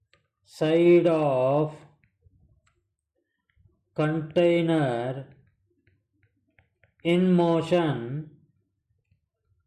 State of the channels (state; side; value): identical; both; correlation 1.00